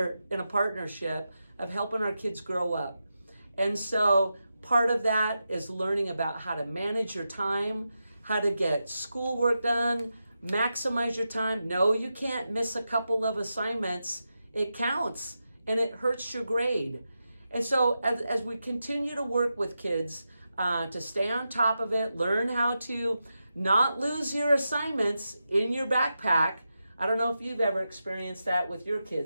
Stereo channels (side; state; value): both; inverted; correlation -0.89